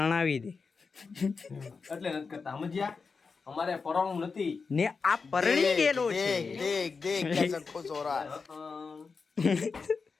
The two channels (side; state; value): right; quieter; 4.9 dB